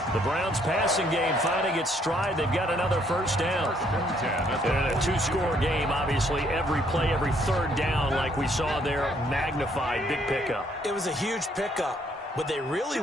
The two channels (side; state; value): both; normal; correlation 0.67